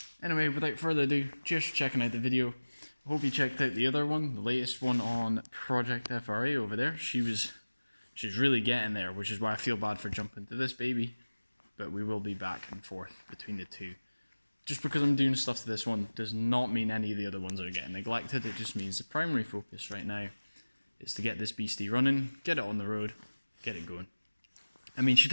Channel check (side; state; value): both; inverted; correlation -1.00